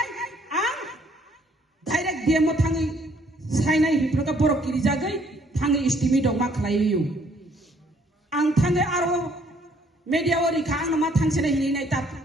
ang direct diem mo thangi sainai hiproka borok kiri jagai thangi estimate dong ma khalai yu ang thangi aro media ori khang nama thangse hini nai tap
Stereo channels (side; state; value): both; normal; correlation 0.64